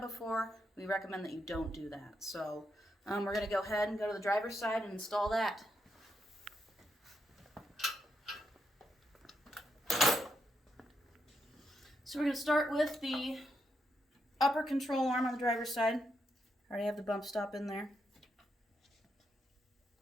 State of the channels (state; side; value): normal; both; correlation 0.81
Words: before, we recommend that you don't do that. So we're going to go ahead and go to the driver's side and install that. So we're going to start with the upper control arm on the driver's side. I already have the bump stop in there.